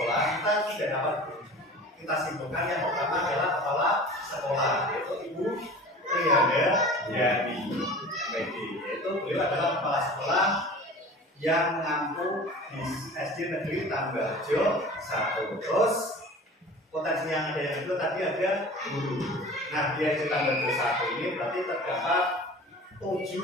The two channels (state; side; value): normal; both; correlation 0.40